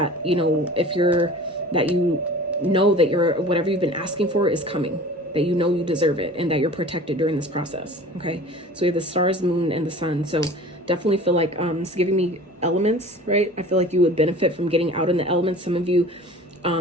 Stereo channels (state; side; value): normal; both; correlation 0.42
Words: you know, that you know that whatever you've been asking for is coming, that you know you deserve it, and that you're protected during this process. Okay, so we have the stars, moon, and the sun. So definitely feel like it's giving me elements, right? I feel like you would benefit from getting out in the elements. Some of you